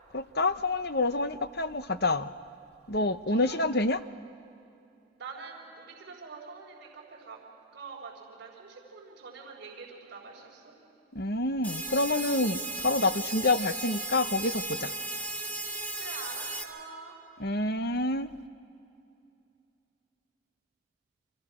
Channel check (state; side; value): normal; both; correlation -0.17